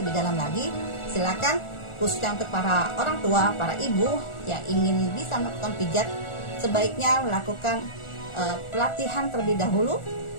dalam lagi, silakan, khususnya untuk para orang tua, para ibu yang ingin bisa melakukan pijat, sebaiknya melakukan pelatihan terlebih dahulu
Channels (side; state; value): right; late; 1.4 ms